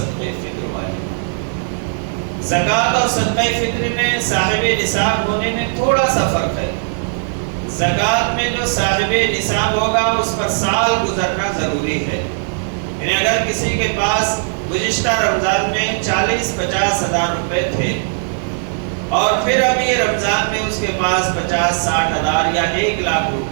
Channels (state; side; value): silent; left; digital silence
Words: فطر واجب ہے. زکوٰۃ اور صدقہ فطر میں صاحب نصاب ہونے میں تھوڑا سا فرق ہے. زکوٰۃ میں جو صاحب نصاب ہوگا اس پر سال گزرنا ضروری ہے. یعنی اگر کسی کے پاس گزشتہ رمضان میں 40-50 ہزار روپے تھے اور پھر اب یہ رمضان میں اس کے پاس 50-60 ہزار یا 1 لاکھ